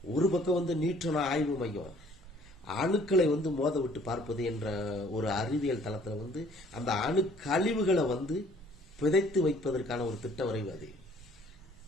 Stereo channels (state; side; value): normal; both; correlation 0.57